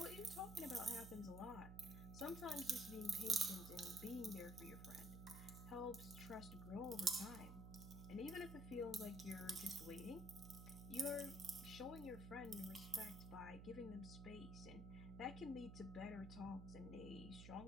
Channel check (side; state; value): right; noise; hum, 9 dB below the sound